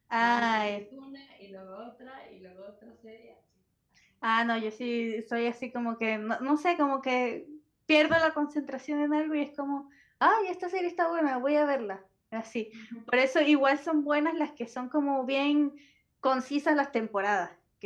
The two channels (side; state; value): both; identical; correlation 1.00